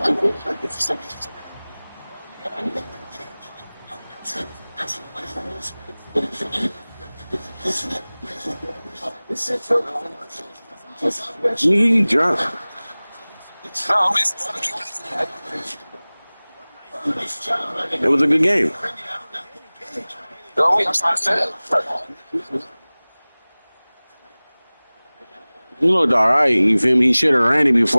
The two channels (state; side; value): inverted; both; correlation -1.00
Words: You drunk. It was a good game. He looked all right. You feel me? He should have ran it